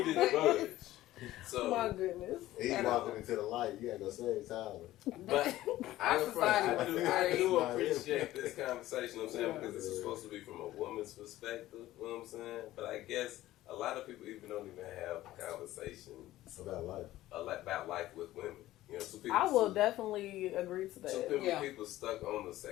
didn't budge. My So, goodness. He's walking into the light. You gotta go save Tyler. but I society do was appreciate this conversation, you know what I'm saying, because this is supposed to be from a woman's perspective, you know what I'm saying? But I guess a lot of people even don't even have conversations About life. about life with women. You know, so people, I will definitely agree to so that. people stuck on the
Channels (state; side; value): quieter; right; 15.4 dB